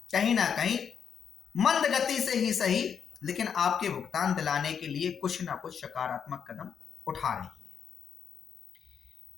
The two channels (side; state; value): right; quieter; 7.3 dB